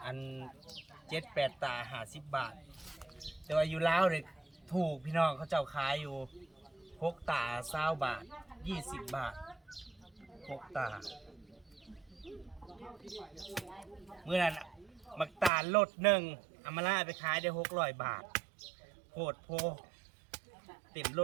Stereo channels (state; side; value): drops out; left; at 15.5 s